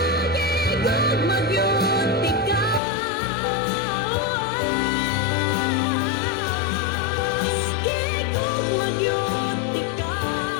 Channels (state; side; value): drops out; right; at 2.8 s